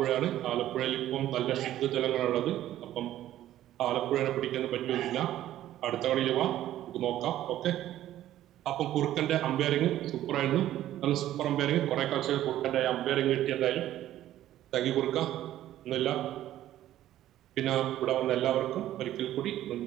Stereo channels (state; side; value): quieter; left; 13.1 dB